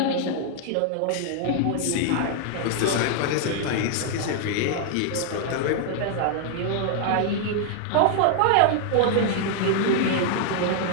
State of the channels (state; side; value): different; both; correlation 0.00